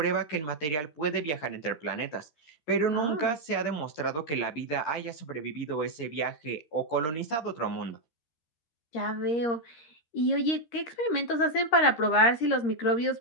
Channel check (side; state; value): right; late; 13 ms